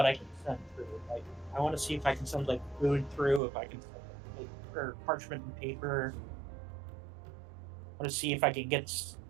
I can send through. Like, I want to see if I can send like food through, if I can send like, or parchment and paper. I want to see if I can get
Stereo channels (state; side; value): drops out; left; at 3.4 s